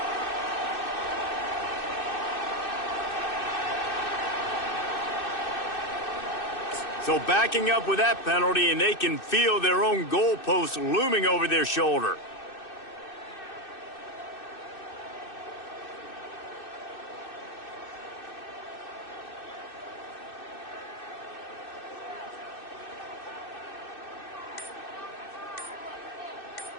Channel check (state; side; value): late; right; 2.6 ms